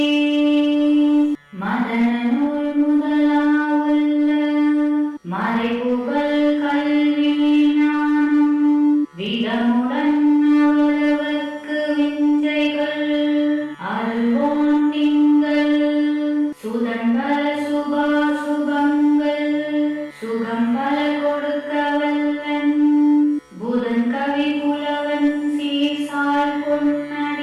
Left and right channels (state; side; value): identical; both; correlation 1.00